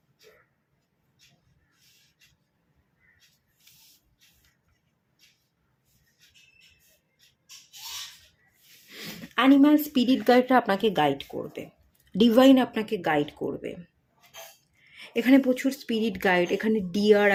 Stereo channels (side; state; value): both; identical; correlation 1.00